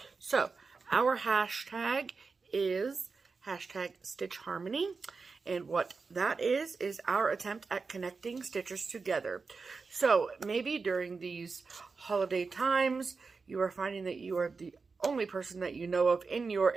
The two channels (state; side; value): quieter; left; 4.6 dB